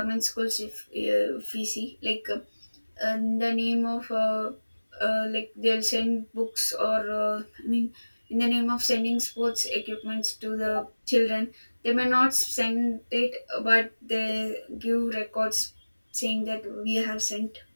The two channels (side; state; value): both; inverted; correlation -1.00